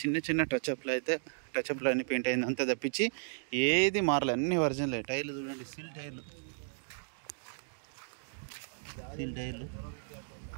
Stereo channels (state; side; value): silent; left; digital silence